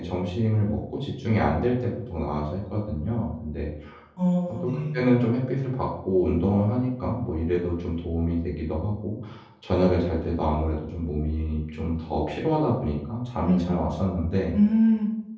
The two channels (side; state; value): both; identical; correlation 1.00